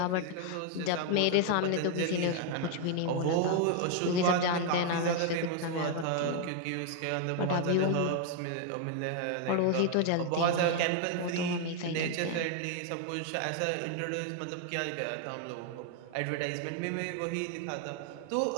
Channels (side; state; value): both; different; correlation 0.00